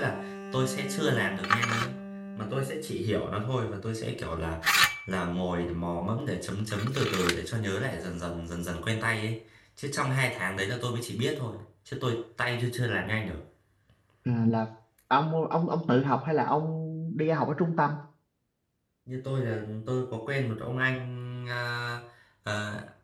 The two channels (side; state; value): both; identical; correlation 1.00